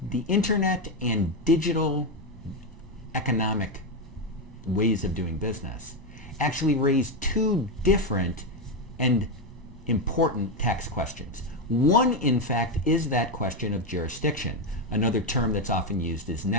the internet and digital economic ways of doing business actually raise two different and important tax questions. One, in fact, is that question of jurisdiction. Another term that's often used is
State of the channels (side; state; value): both; normal; correlation 0.08